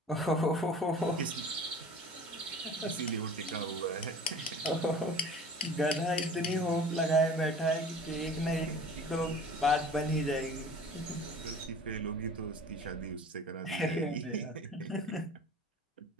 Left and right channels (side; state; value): both; normal; correlation 0.43